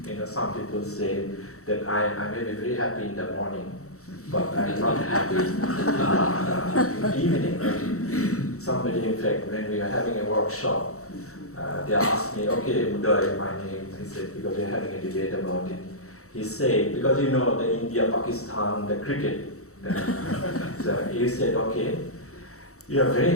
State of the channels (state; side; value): late; right; 0.64 ms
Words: You know, some people say that I may be very happy in the morning, but I'm not happy in the evening. Somebody, in fact, when we were having a workshop, they asked me, okay, Udoy, my name, he said, because they're having a debate about it. He said, because you know the India, Pakistan, the cricket, so he said, okay, you are very